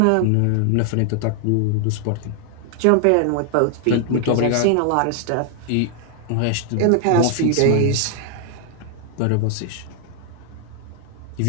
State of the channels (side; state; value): both; different; correlation 0.00